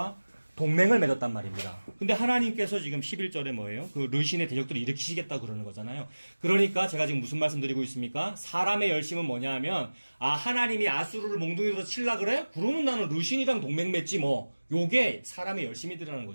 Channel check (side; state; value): both; inverted; correlation -1.00